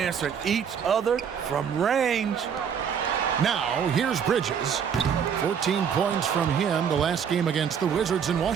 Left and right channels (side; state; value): left; quieter; 7.5 dB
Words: each other from range. Now, here's Bridges. 14 points from him the last game against the Wizards in